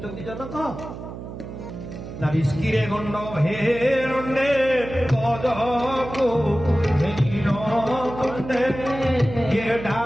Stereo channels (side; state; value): right; noise; hum, 10 dB below the sound